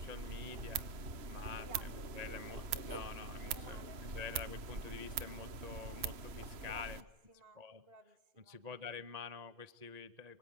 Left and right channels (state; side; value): late; left; 3.0 ms